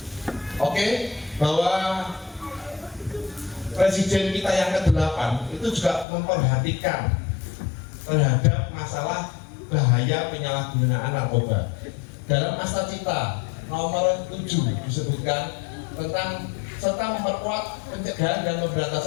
Oke, bahwa presiden kita yang ke-8 itu juga memperhatikan terhadap masalah bahaya penyalahgunaan narkoba. Dalam Asta Cita nomor 7 disebutkan tentang serta memperkuat pencegahan dan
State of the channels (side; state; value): right; drops out; at 6.1 s